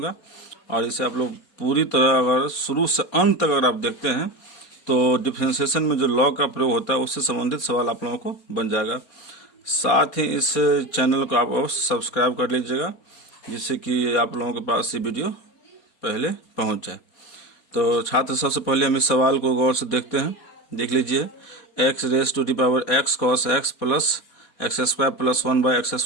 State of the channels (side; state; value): right; late; 4.4 ms